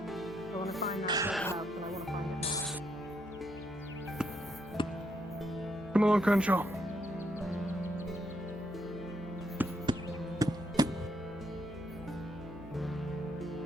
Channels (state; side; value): noise; left; hum, 20 dB below the sound